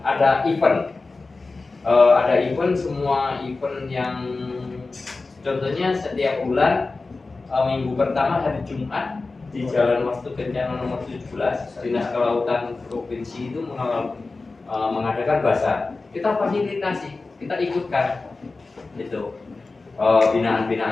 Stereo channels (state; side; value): quieter; right; 3.7 dB